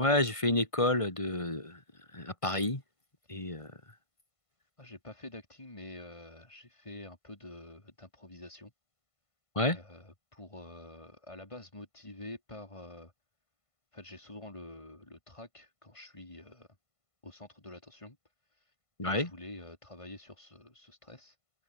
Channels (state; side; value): late; right; 1.5 ms